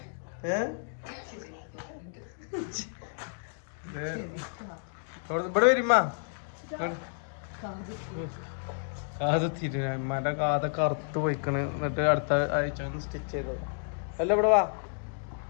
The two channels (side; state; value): right; silent; digital silence